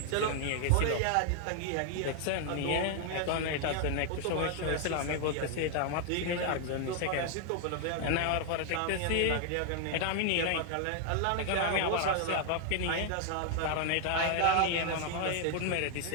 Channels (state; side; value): different; both; correlation 0.00